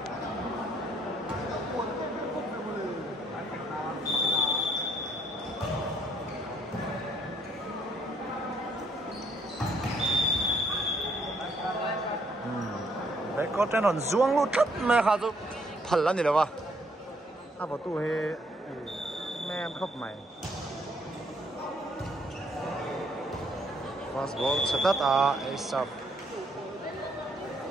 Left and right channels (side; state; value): both; normal; correlation 0.68